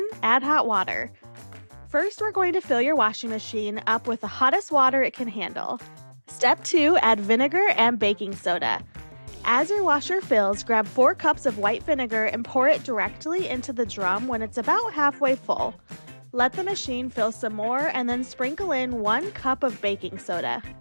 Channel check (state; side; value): inverted; both; correlation -1.00